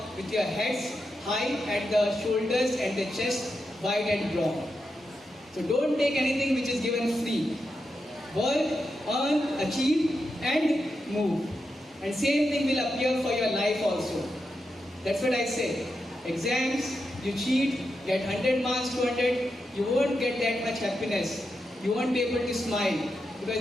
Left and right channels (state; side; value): normal; both; correlation 0.87